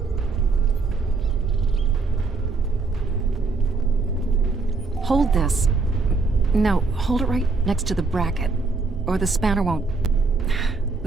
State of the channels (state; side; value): quieter; left; 4.0 dB